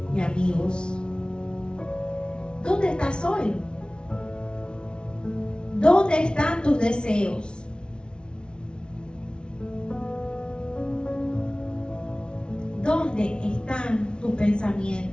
y amigos? ¿Dónde estás hoy? ¿Dónde están tus deseos? ¿Dónde están tus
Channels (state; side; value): late; right; 0.056 ms